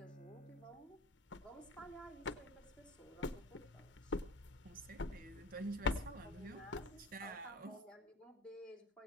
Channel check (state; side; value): normal; both; correlation 0.38